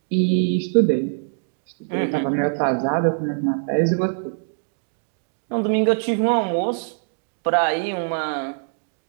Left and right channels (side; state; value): left; silent; digital silence